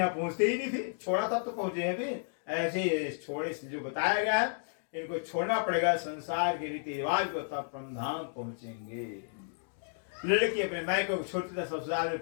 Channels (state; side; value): silent; right; digital silence